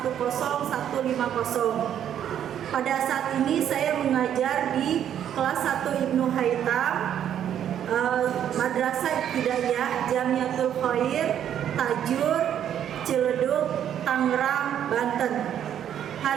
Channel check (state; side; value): quieter; left; 9.9 dB